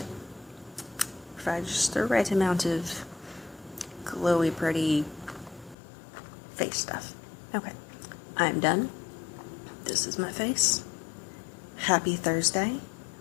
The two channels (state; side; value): drops out; right; at 5.8 s